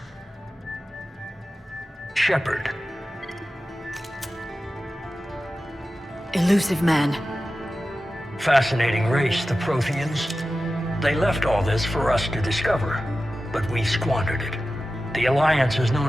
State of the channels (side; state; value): both; normal; correlation 0.94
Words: Shepard. Elusive man. Fascinating race, the Protheans. They left all this for us to discover, but we squandered it. The Alliance has